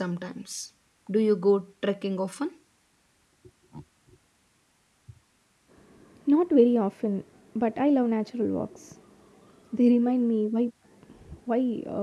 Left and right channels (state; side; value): identical; both; correlation 1.00